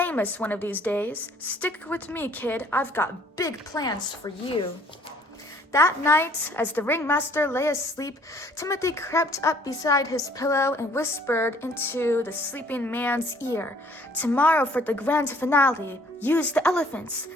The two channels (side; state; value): both; normal; correlation 0.59